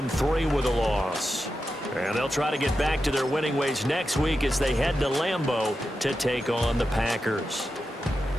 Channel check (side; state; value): both; normal; correlation 0.90